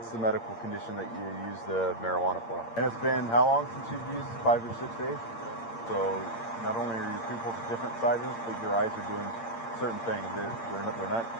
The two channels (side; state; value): right; late; 8.7 ms